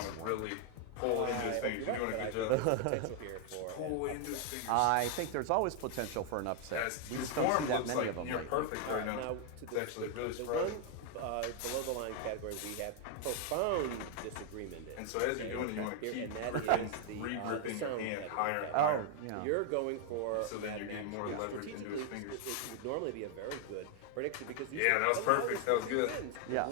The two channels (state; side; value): different; both; correlation 0.00